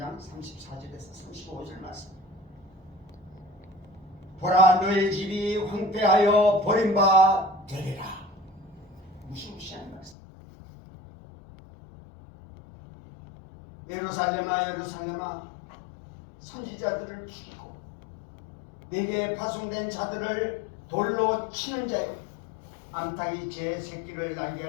34절에서 35절 말씀. 보라, 너희 집이 황폐하여 버림바 되리라. 무시무시한 말씀. 예루살렘아, 예루살렘아, 선지자들을 죽이고 내게 파송된 자들을 돌로 치는 자여, 암탉이 제 새끼를 날개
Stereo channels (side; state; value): right; drops out; at 10.2 s